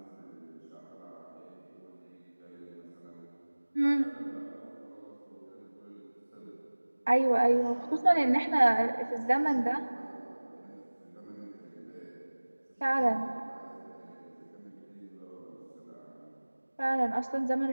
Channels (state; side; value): inverted; both; correlation -1.00